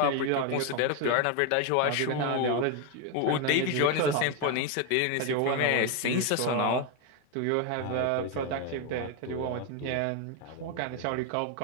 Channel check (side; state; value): both; different; correlation 0.01